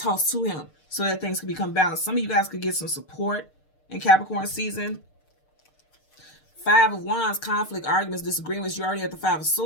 to him, so that things can become balanced. Some of you guys could get some support in Capricorn season. 5 of Wands, conflict, arguments, disagreements. You already have the 5 of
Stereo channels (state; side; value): late; right; 6.6 ms